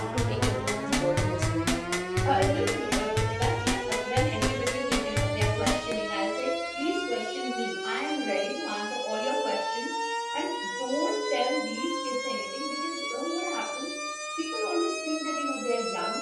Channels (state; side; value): identical; both; correlation 1.00